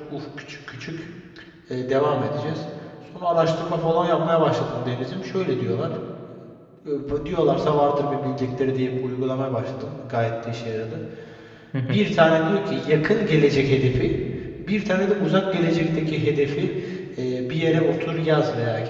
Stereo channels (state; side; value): identical; both; correlation 1.00